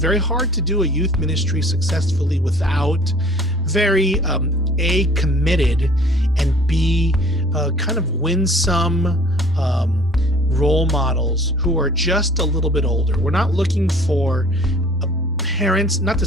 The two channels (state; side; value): normal; both; correlation 0.51